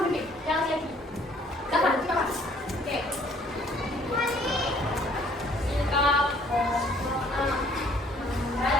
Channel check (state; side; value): normal; both; correlation 0.60